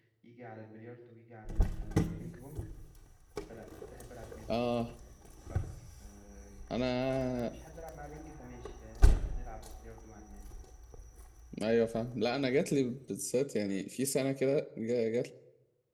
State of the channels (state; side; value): identical; both; correlation 1.00